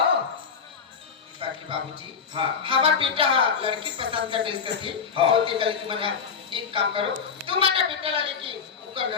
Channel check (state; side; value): quieter; right; 6.3 dB